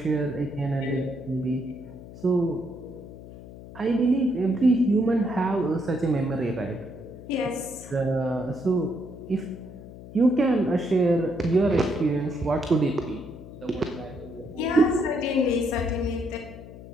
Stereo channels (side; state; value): left; noise; hum, 15 dB below the sound